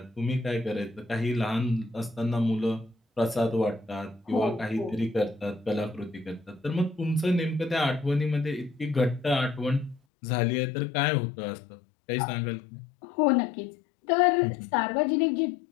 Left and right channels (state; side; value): drops out; right; at 10.0 s